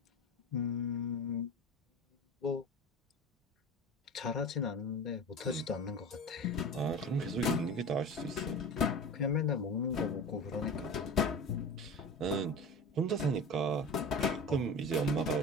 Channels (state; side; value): normal; both; correlation 0.32